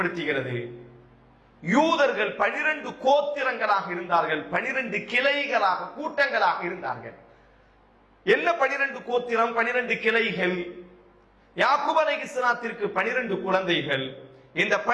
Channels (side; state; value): both; identical; correlation 1.00